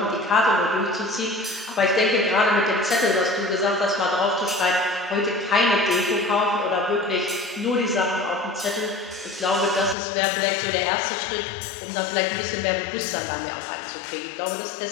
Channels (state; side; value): drops out; right; at 10.0 s